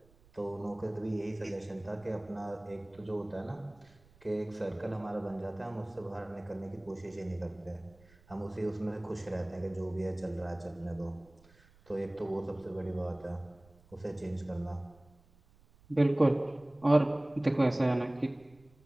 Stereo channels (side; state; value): right; noise; rumble, 28 dB below the sound